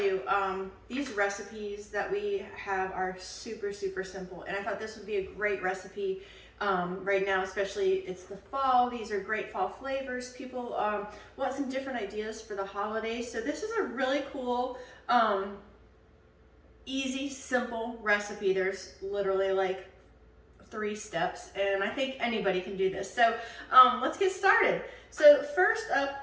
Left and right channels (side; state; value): both; identical; correlation 1.00